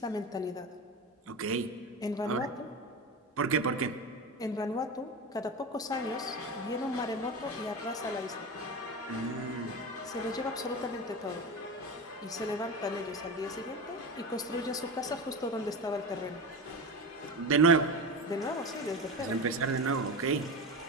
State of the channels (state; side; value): normal; both; correlation 0.24